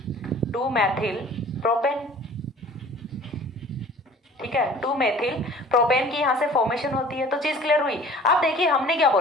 2 मैथिल प्रोपेन, ठीक है। 2 मेथिल प्रोपेन की यहाँ से फॉर्मेशन होती है। तो चीज क्लियर हुई। अब देखिए हमने क्या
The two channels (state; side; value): normal; both; correlation 0.48